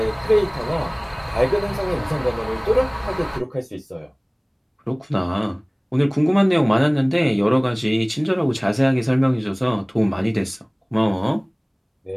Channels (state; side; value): identical; both; correlation 1.00